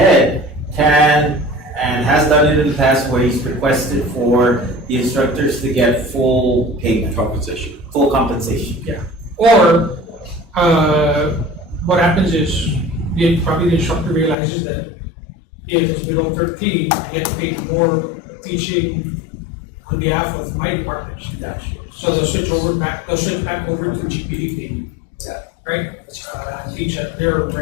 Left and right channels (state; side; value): drops out; right; at 14.4 s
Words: can and has done it in the past where he's requested for the instructors to get full payment, compensation? full compensation. Or, what happens is, probably the instructor realizes that if it's below 13, I get paid more teaching on behalf of my department. So they'll switch back over to GPD payment. Yeah. Right? Teach at their